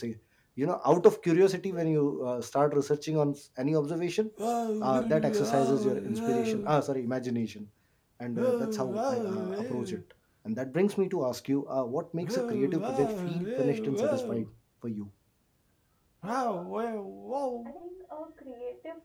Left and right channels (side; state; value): both; identical; correlation 1.00